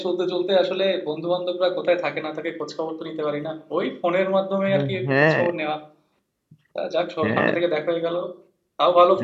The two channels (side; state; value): both; identical; correlation 1.00